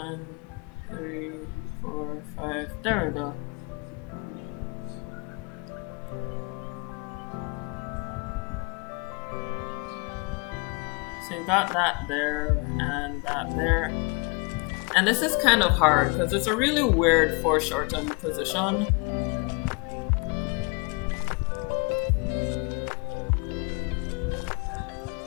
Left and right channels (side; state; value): right; quieter; 31.8 dB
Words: 3, 4, 5. There we go. So you got that there and that there. And this is kind of hard because it's a really weird foreshortened position.